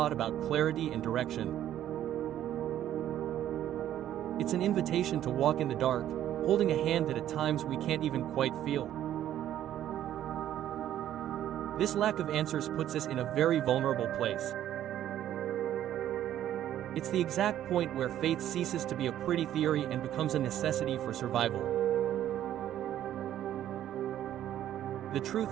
about clarity and direction. It's an invitation to walk in the dark, holding a hand that at times we can't even quite feel. This lack of answers puts us in a very vulnerable place. It's the exact point where faith ceases to be a pretty theory and becomes a necessity for survival. The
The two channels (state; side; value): quieter; left; 11.7 dB